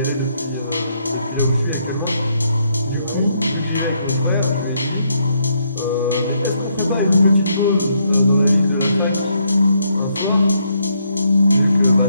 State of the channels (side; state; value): both; inverted; correlation -0.74